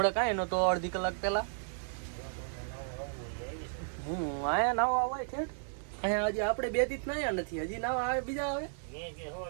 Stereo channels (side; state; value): left; silent; digital silence